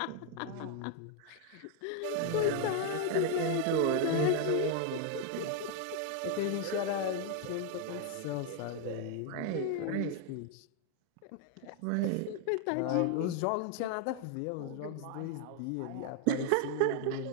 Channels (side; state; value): both; different; correlation 0.00